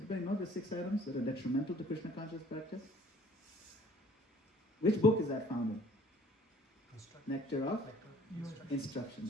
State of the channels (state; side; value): normal; both; correlation 0.56